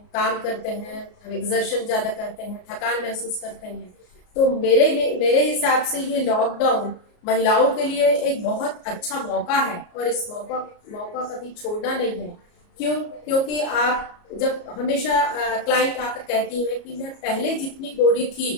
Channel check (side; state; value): right; late; 33 ms